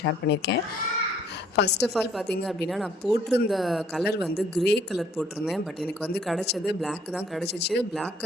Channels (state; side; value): normal; both; correlation 0.61